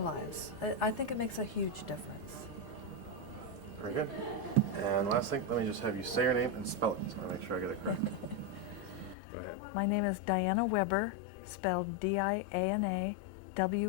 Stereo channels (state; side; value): drops out; right; at 9.2 s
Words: I think it makes a huge difference. Very good. And last thing, let me just have you say your name and spell it, so I make sure I get it correct. Go ahead. My name is Diana Weber, spelled D-I-A-N-A-W-E-B-E-R,